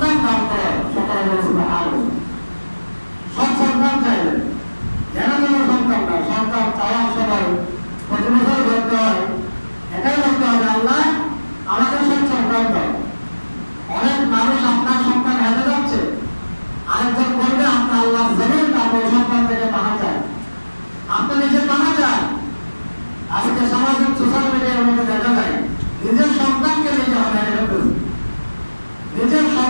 দান করেন। সকলে সৎ সন্তান চাইলেন, যেন কোনো সন্তান না, সন্তান চাওয়ার সময় প্রতি বছর বলতে হয় এটাই বলতে হবে আল্লাহ আমাকে সৎ সন্তান দাও। অনেক মানুষ আপনার সন্তান হেঁটে যাচ্ছে, আরেকজন বলবে আপনার আল্লাহ জমিন তারপর সন্তান থেকে বানা যায়, আপনি নিজে বানা যায়। আজকে সামাজিক সোশ্যাল মিডিয়ার মধ্যে দেখা যায় নিজের সন্তানকে নিজে হটাই রেখেছে, নিজের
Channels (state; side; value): inverted; both; correlation -1.00